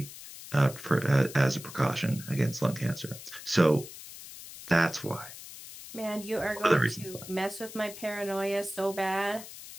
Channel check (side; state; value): left; noise; hiss, 14 dB below the sound